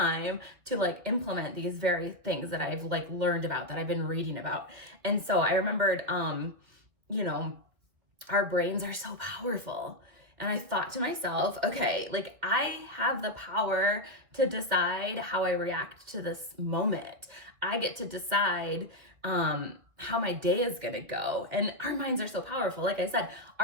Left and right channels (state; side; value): late; left; 2.4 ms